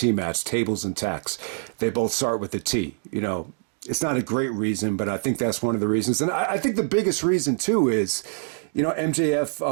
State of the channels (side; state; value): left; silent; digital silence